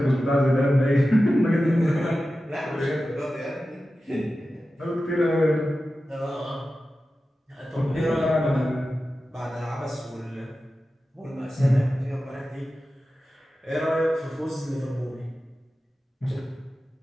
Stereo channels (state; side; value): normal; both; correlation 0.94